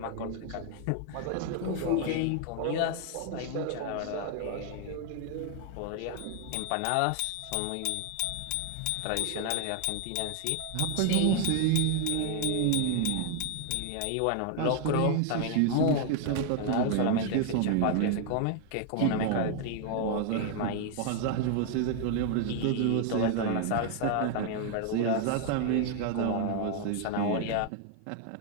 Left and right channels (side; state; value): both; different; correlation 0.00